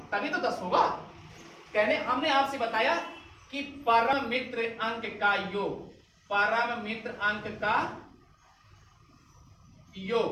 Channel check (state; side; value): identical; both; correlation 1.00